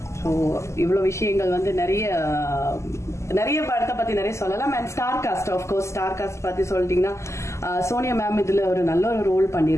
ஸோ இவ்வளவு விஷயங்கள் வந்து நிறைய படத்தை பத்தி நிறைய சொல்லலாம். And star cast, of course star cast பத்தி சொல்லிட்டீங்கன்னா சோனியா மேம் இதுல ஒரு நல்ல ஒரு ரோல்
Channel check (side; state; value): right; late; 0.13 ms